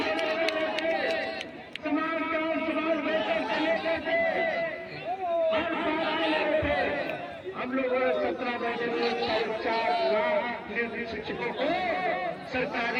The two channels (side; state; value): both; identical; correlation 1.00